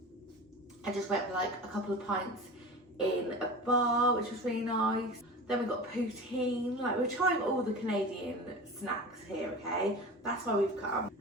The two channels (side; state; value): both; normal; correlation 0.33